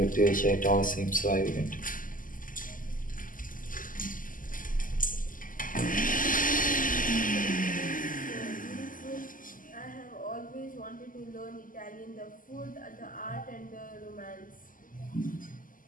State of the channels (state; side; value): late; right; 0.39 ms